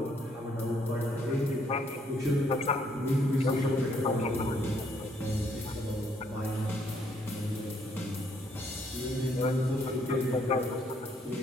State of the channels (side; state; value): both; normal; correlation 0.69